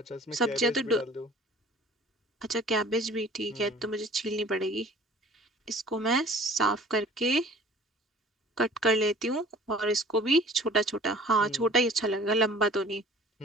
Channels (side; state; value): both; normal; correlation 0.49